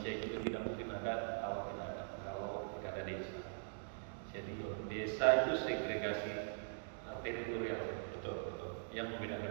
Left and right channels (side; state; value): left; silent; digital silence